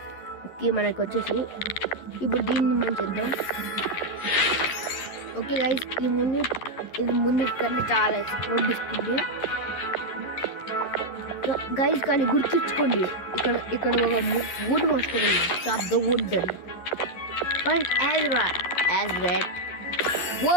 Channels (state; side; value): late; right; 11 ms